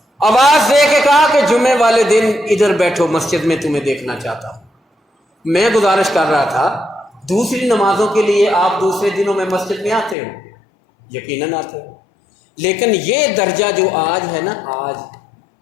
آواز دے کے کہا کہ جمعے والے دن ادھر بیٹھو، مسجد میں تمہیں دیکھنا چاہتا ہوں۔ میں گزارش کر رہا تھا دوسری نمازوں کے لیے آپ دوسرے دنوں میں مسجد میں آتے ہو، یقیناً آتے ہو، لیکن یہ درجہ جو آج ہے نا، آج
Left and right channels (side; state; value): right; drops out; at 10.2 s